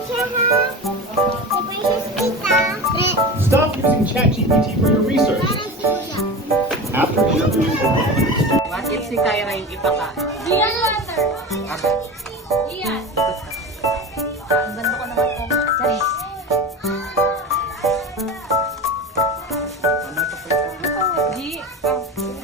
siya ha. Si Princess Tita. Stop using ChatGPT for your research. Parang si Kuya. After interviewing over 100 students, What if si Kyra yung ipakain? Gian water. Okay. Gian. Ikot ka.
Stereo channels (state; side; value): normal; both; correlation 0.29